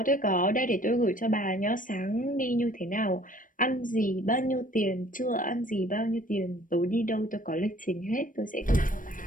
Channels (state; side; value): late; right; 0.39 ms